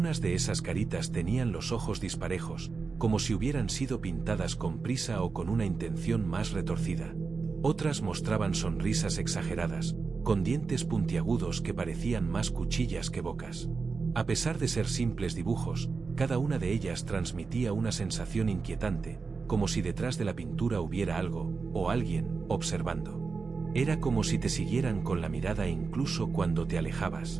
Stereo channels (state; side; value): quieter; left; 4.6 dB